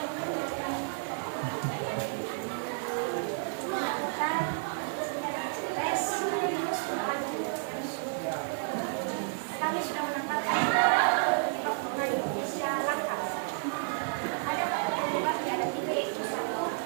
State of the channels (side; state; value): left; silent; 57 dB below the other